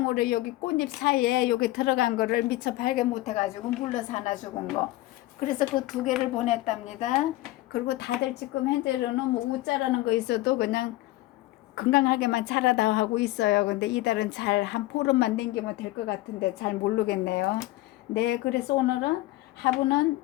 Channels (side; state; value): right; quieter; 17.8 dB